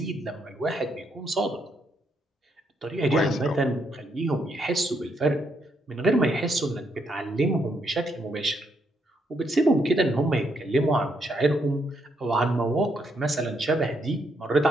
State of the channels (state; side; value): normal; both; correlation 0.76